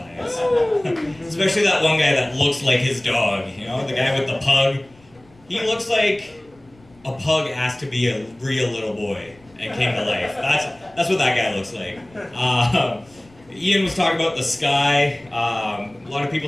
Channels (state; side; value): noise; left; rumble, 29 dB below the sound